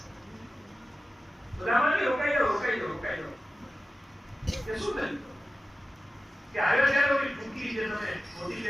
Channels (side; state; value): both; normal; correlation 0.95